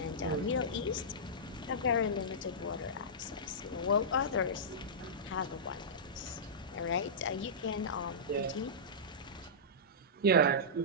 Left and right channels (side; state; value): both; normal; correlation -0.16